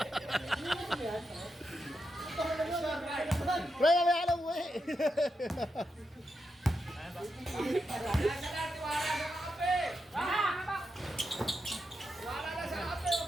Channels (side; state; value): both; normal; correlation 0.86